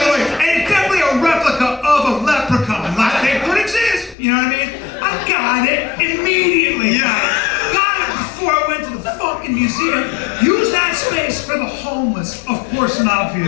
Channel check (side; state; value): right; drops out; at 4.2 s